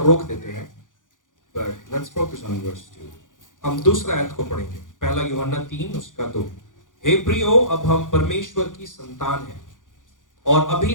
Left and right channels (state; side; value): late; right; 0.88 ms